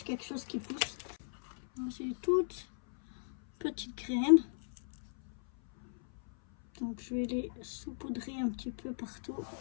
quelque chose qui pousse. C'est des toutes petites graines. Donc je vais les saupoudrer un petit peu partout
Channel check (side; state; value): right; silent; 54 dB below the other